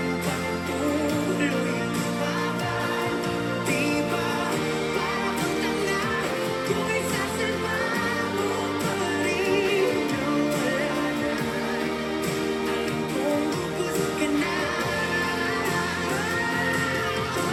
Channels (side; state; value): both; identical; correlation 1.00